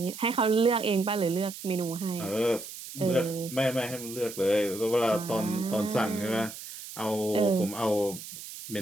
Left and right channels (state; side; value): noise; right; hiss, 12 dB below the sound